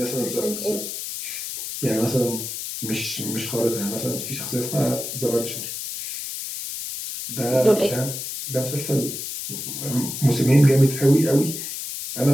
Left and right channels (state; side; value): noise; left; hiss, 6 dB below the sound